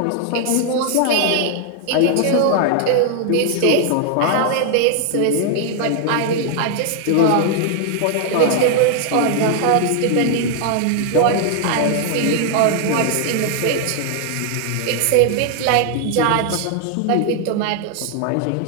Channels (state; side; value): different; both; correlation 0.00